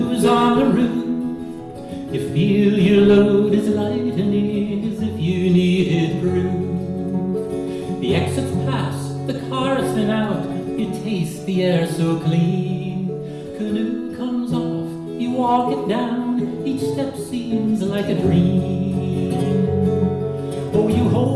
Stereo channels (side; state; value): both; identical; correlation 1.00